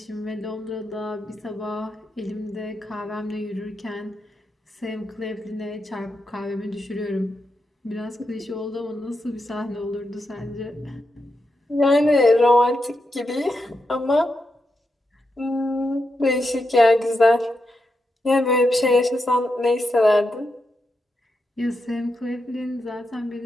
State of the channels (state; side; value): normal; both; correlation 0.86